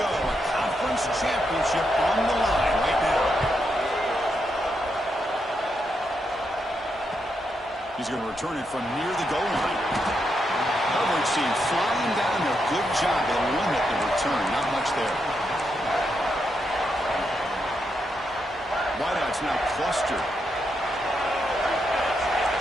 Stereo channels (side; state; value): both; normal; correlation 0.82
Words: A conference championship on the line right now. He's going to return it from near the goal line. Coverage team flying down there. Good job. They'll limit the return. Not much there. Wideouts now clustered.